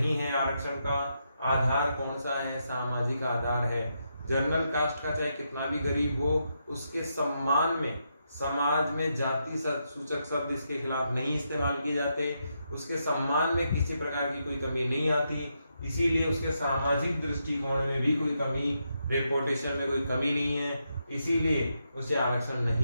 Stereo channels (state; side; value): inverted; both; correlation -0.82